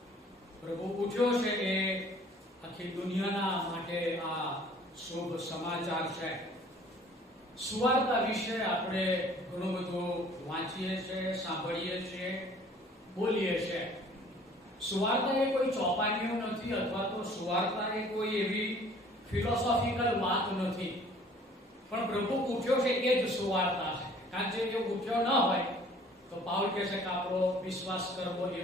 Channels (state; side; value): normal; both; correlation 0.53